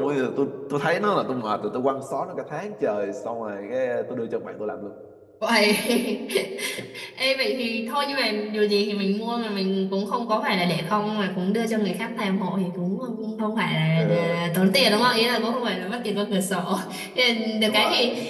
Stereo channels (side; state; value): both; identical; correlation 1.00